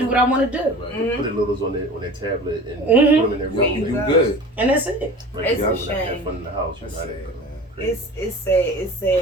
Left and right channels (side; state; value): both; normal; correlation 0.38